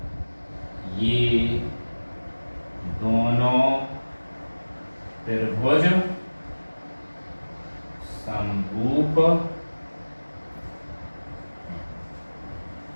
ये दोनों त्रिभुज समरूप।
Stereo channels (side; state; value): both; inverted; correlation -1.00